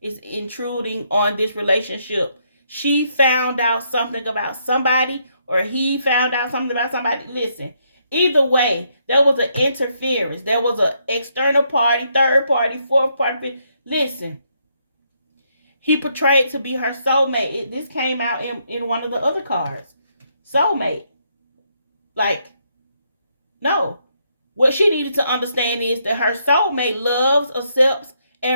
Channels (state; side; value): inverted; both; correlation -0.75